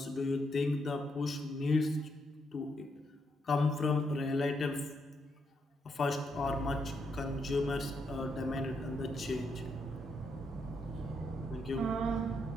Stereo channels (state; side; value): normal; both; correlation 0.78